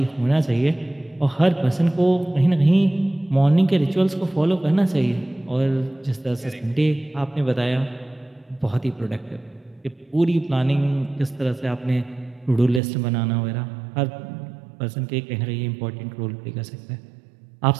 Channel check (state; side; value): drops out; left; at 12.8 s